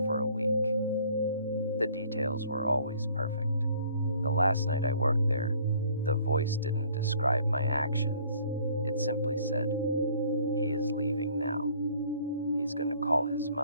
for a week. The details were always perfect. The last night I worked there, the voice didn't describe my actions. It simply said, "He is leaving now. He's going to call his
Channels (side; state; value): both; inverted; correlation -0.57